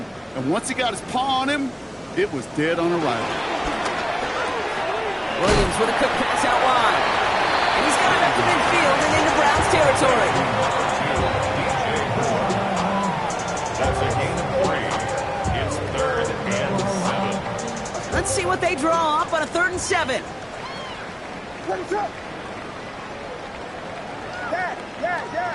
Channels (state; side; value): identical; both; correlation 1.00